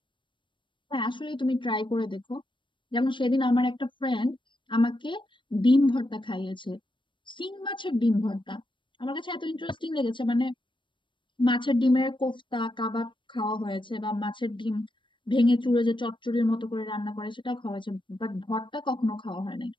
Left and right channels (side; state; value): right; late; 0.24 ms